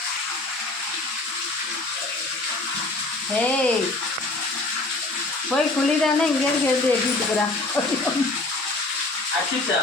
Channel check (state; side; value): quieter; right; 3.0 dB